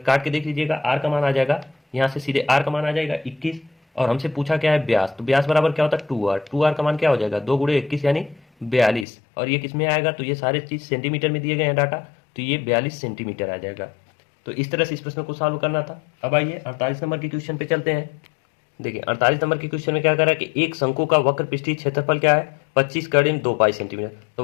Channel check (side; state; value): right; drops out; at 9.1 s